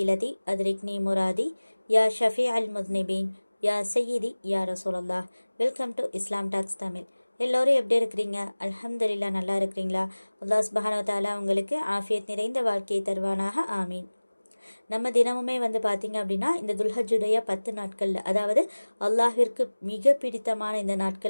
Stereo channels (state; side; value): inverted; both; correlation -1.00